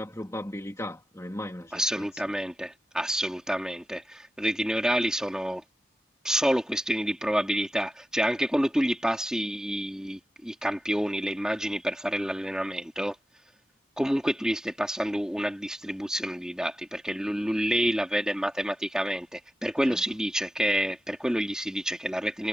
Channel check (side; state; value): both; normal; correlation 0.92